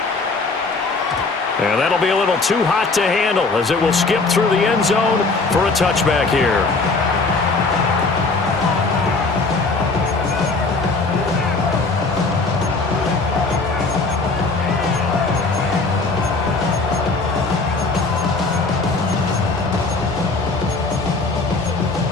And that'll be a little too hot to handle as it will skip through the end zone for a touchback here.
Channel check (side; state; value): right; quieter; 3.8 dB